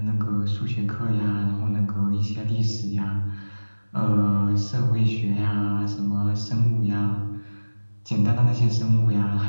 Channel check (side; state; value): both; inverted; correlation -1.00